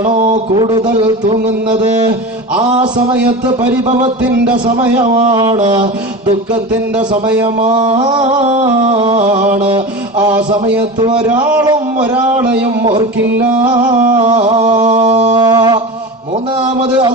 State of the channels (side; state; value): both; normal; correlation 0.28